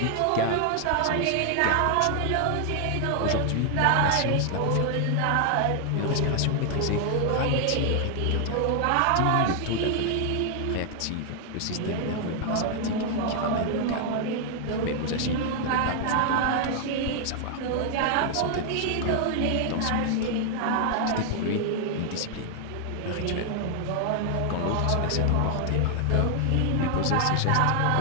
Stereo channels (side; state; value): both; different; correlation 0.00